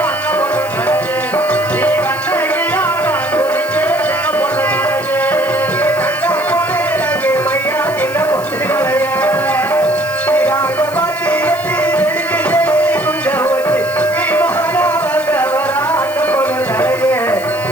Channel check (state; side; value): noise; left; hiss, 16 dB below the sound